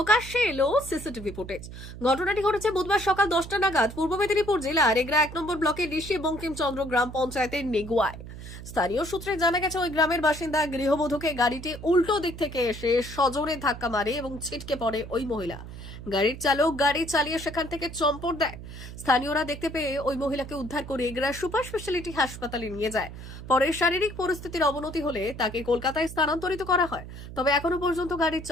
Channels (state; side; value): noise; right; hum, 12 dB below the sound